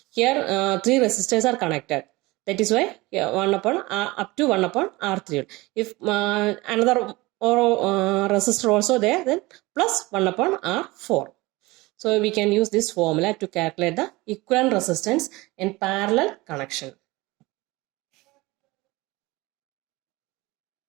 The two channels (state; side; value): quieter; left; 21.7 dB